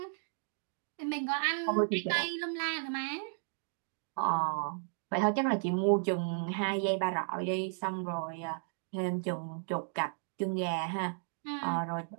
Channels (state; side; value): silent; left; digital silence